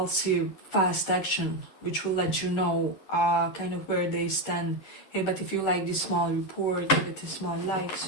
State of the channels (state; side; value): late; right; 10 ms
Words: fast action, which will let you know kind of where they stand. Hey, but if you like this small report, give it a small like